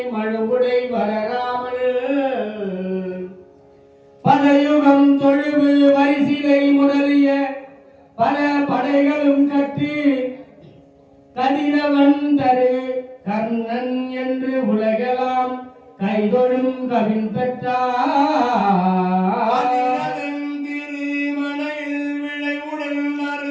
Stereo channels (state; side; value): identical; both; correlation 1.00